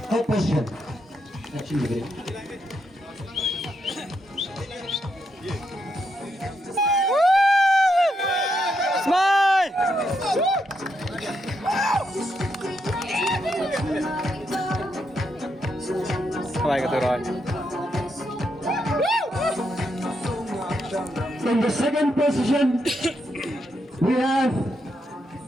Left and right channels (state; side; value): normal; both; correlation 0.80